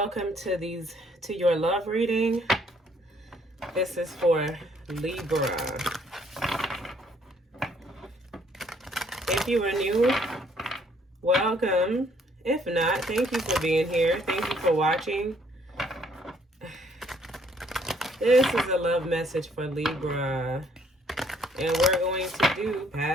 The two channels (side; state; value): both; normal; correlation 0.65